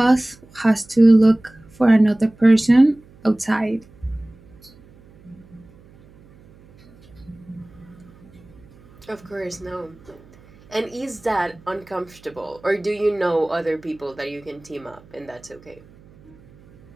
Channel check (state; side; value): noise; right; hum, 26 dB below the sound